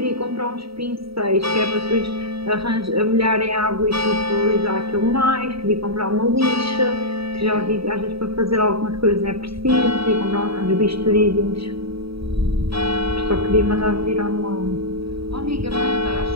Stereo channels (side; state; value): left; late; 0.76 ms